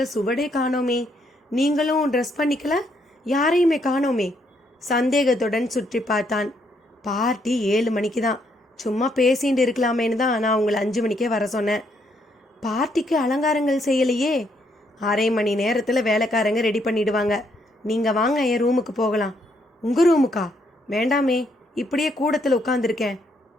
சுவடே காணோமே, நீங்களும் ட்ரெஸ் பண்ணிக்கல, யாரையுமே காணோமே? சந்தேகத்துடன் சுற்றி பார்த்தான். பார்ட்டி 7 மணிக்கு தான், சும்மா பேசிட்டு இருக்கலாமேன்னு தான் நான் உங்களை 5 மணிக்கே வர சொன்னேன். பார்ட்டிக்கு அலங்காரங்கள் செய்யலையே? 1/2 மணி நேரத்தில் வேலைக்காரங்க ரெடி பண்ணிடுவாங்க. நீங்கள் வாங்க, என் ரூமுக்கு போகலாம். உங்கள் ரூமுக்கா? வேண்டாமே, இப்படியே கூடத்தில் உட்காந்துருக்கேன்.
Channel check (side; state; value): both; normal; correlation 0.73